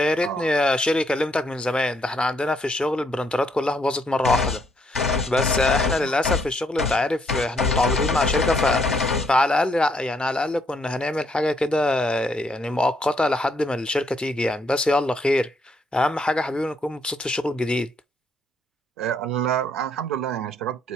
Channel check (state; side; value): normal; both; correlation 0.71